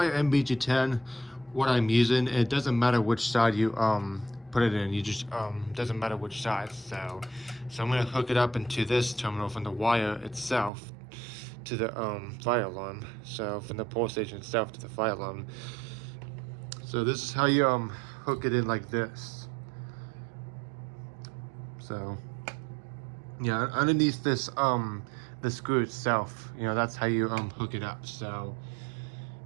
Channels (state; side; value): drops out; left; at 10.7 s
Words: NBG10, what I'm using, it doesn't matter which side you put it in. You just doesn't matter which side. So I'm gonna hook it up into this terminal from the wire itself to the fire alarm. So from the pole station itself to the fire alarm. So this is how you hook it in, like this. So yeah, underneath this the screw itself, that's how you hook it up. So